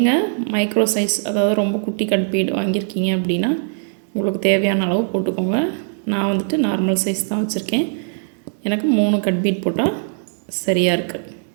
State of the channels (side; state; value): left; silent; digital silence